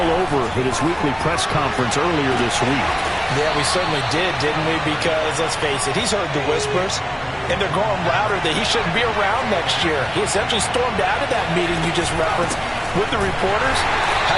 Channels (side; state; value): both; identical; correlation 1.00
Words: over at his weekly press conference earlier this week. Yeah, we certainly did, didn't we? Because, let's face it, he's heard the whispers. And they're going louder that he shouldn't be around next year. He essentially stormed out of that meeting you just referenced with the reporters.